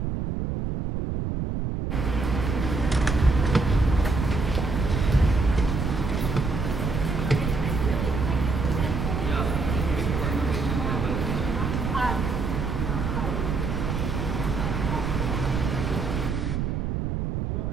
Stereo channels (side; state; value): right; noise; rumble, 1 dB below the sound